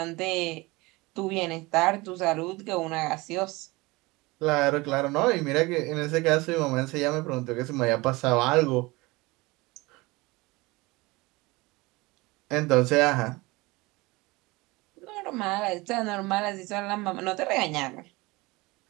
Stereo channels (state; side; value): quieter; left; 22.9 dB